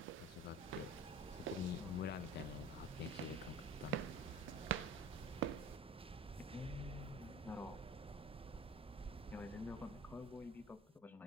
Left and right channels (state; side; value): normal; both; correlation 0.40